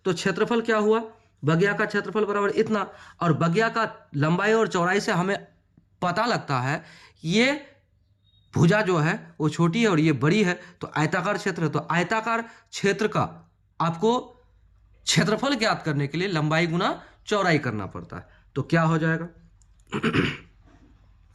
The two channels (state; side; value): identical; both; correlation 1.00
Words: तो क्षेत्रफल क्या हुआ, बगिया का क्षेत्रफल बराबर इतना, और बगिया का लंबाई और चौड़ाई से हमें पता लगता है ये भुजा जो है वो छोटी है और ये बड़ी है, तो आयताकार क्षेत्र है। तो आयताकार क्षेत्र का आपको क्षेत्रफल ज्ञात करने के लिए लंबाई गुना चौड़ाई करना पड़ता है। तो क्या हो जाएगा,